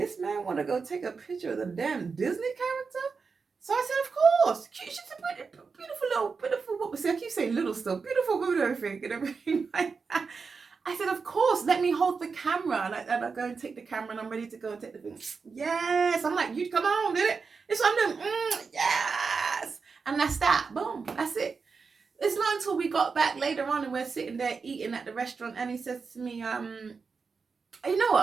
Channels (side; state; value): left; quieter; 5.0 dB